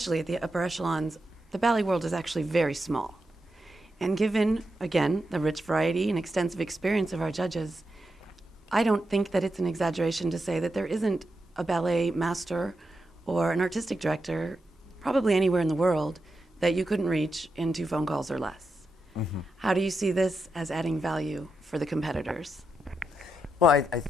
at the upper echelons, the ballet world is actually very small. And given, again, the rich variety and extensive experience of our judges, I don't think that it's an exaggeration to say that there isn't a ballet master or an artistic director, probably anywhere in the world, that you couldn't reach in 2 phone calls or less. Mm-hmm. How do you see this as adding value for the competitors? Well, I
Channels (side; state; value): both; normal; correlation 0.86